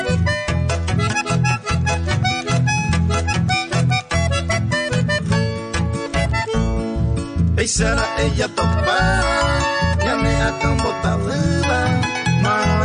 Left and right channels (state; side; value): identical; both; correlation 1.00